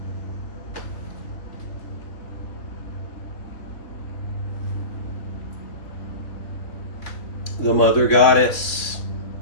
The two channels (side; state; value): right; late; 3.1 ms